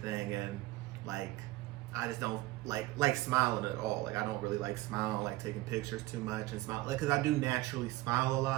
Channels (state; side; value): quieter; left; 19.2 dB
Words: and like I just don't like smiling at all. Like I don't really like smiling, like taking pictures too much and smile, like, because I do naturally smile a